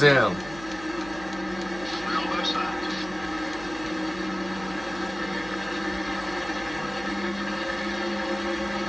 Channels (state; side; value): noise; right; hum, 16 dB below the sound